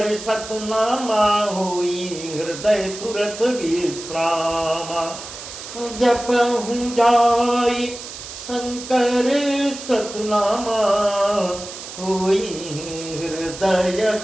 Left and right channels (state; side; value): noise; right; hiss, 12 dB below the sound